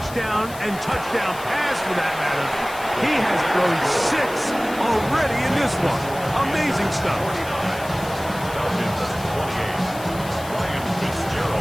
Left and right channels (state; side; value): noise; left; hiss, 16 dB below the sound